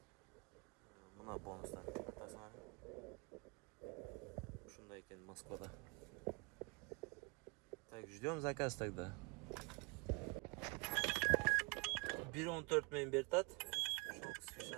Buna bonuslar tasmani. Shunday ekan Moskvada. Так, ждем заказ тогда. 1.14 men bertat.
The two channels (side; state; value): left; quieter; 29.5 dB